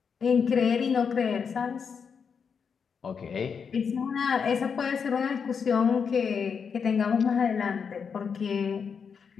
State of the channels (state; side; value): quieter; right; 6.3 dB